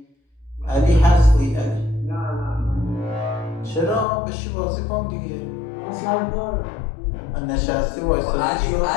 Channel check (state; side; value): drops out; right; at 4.0 s